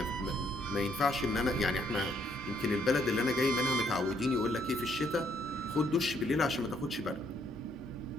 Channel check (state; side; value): normal; both; correlation 0.70